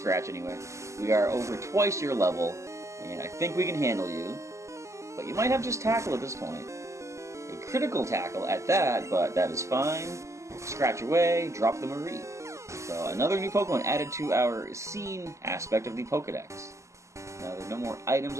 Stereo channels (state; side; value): late; left; 0.14 ms